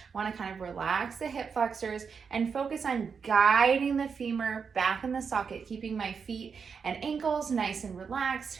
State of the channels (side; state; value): left; quieter; 6.0 dB